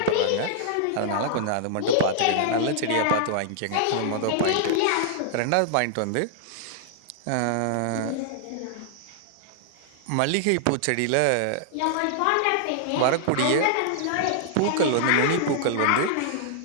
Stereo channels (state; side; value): different; both; correlation -0.01